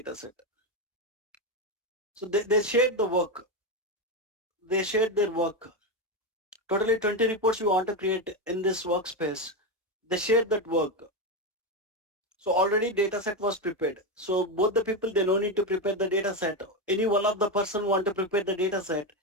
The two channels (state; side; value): normal; both; correlation 0.11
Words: set. So they shared the work. They shared their work. Totally 20 reports you want to create in this workspace. They shared that work. So already data set was prepared. So both the people, they no need to prepare the data set. Any one of the person want to prepare the data set.